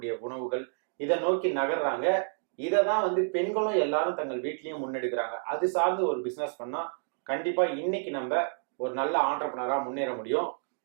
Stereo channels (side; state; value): left; silent; digital silence